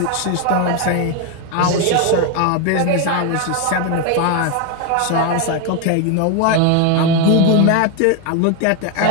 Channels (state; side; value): different; both; correlation 0.01